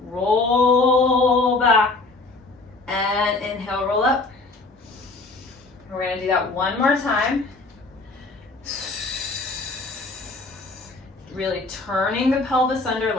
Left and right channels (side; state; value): right; quieter; 3.4 dB